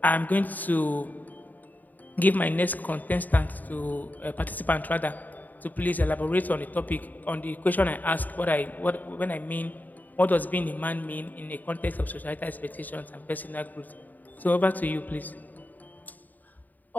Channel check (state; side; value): late; right; 0.083 ms